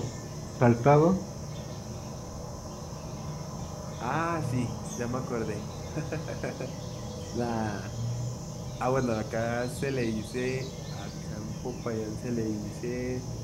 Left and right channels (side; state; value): both; identical; correlation 1.00